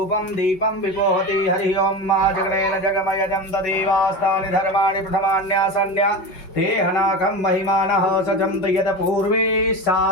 दीपं विपोहति। हरि ओं मा जगनेन जगमयजं तदेवास्तानि धर्माणि प्रथमान्यासन्या ते हनाकं महिमानः सजन्त यत् पूर्वे सा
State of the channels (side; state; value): right; late; 5.3 ms